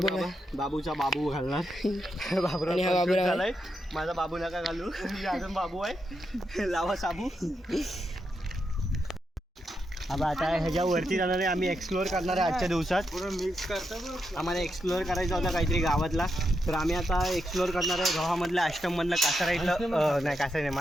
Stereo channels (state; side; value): normal; both; correlation 0.84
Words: आहे. बाबूचा बाबू घालणार. आणि हा बाबूराव आहे. माझा बाबू नका घालू. अजून बाबू आहे. लावा साबू. आता ह्याच्यावरती जाणार आहे. आम्ही एक्सप्लोअर करणार आहे आजच्या दिवसात. मिक्स करतो. आम्हाला एक्सप्लोअर करायचा होता काहीतरी गावातला, तर आम्ही आता एक्सप्लोअर करणार आहे गावामधलं आश्रममधलं कासाराईतलं. नाही कासाराई नाही,